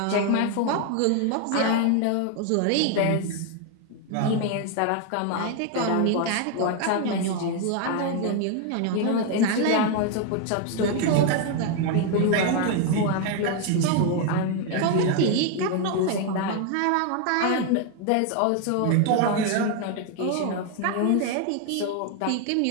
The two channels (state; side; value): different; both; correlation 0.01